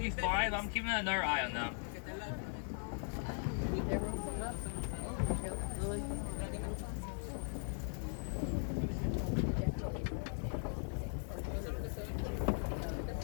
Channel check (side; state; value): right; silent; 52 dB below the other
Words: be fine, but I'm keeping another eye on them.